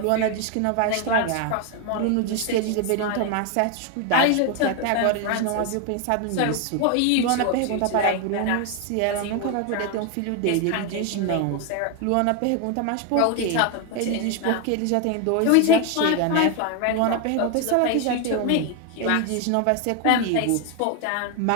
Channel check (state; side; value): different; both; correlation 0.01